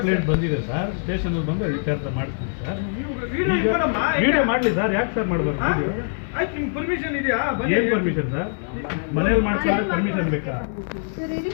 ಬಂದಿದೆ sir. Station ಬಂದು ಇತ್ಯರ್ಥ ಮಾಡ್ತೀನಿ ಸರ್. ವಿಡಿಯೋ ವಿಡಿಯೋ ಮಾಡಲಿ ಸರ್. ಯಾಕೆ ಸರ್ ಮಾಡಬಾರ್ದು? ಆಯ್ತು, ನಿಮ್ಗೆ ಪರ್ಮಿಷನ್ ಇದೆಯಾ? ಏನು ಪರ್ಮಿಷನ್ ಸರ್? ಮನೇಲಿ ಮಾಡ್ಕೊಂಡ್ರೆ ಪರ್ಮಿಷನ್ ಬೇಕಾ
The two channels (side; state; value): right; silent; 63 dB below the other